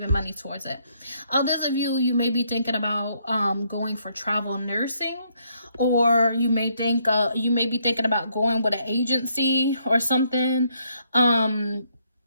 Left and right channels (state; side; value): inverted; both; correlation -0.72